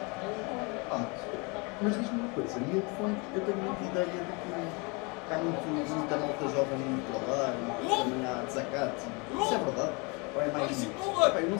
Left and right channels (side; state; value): right; quieter; 29.9 dB